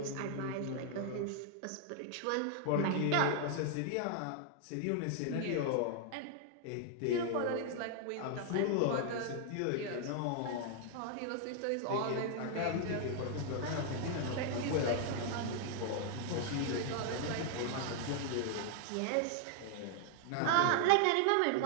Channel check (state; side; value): different; both; correlation 0.00